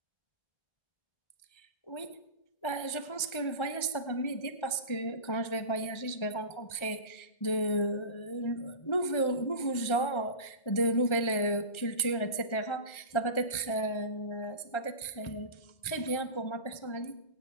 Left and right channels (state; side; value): late; right; 1.4 ms